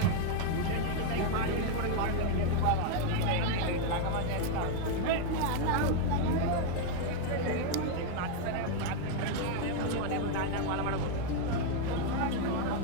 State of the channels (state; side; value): different; both; correlation 0.00